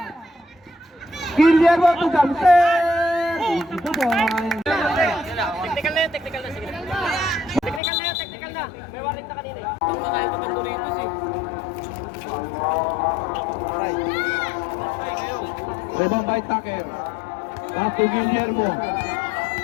Guillermo to Thompson. Ito po. Technical na yan, technical na. Sige. Technical na yan, technical na. May warning na kanina eh. Ang mga iba bang Doritos eh. Rebound by Tucker. Tato Guillermo.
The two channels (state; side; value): drops out; right; at 7.8 s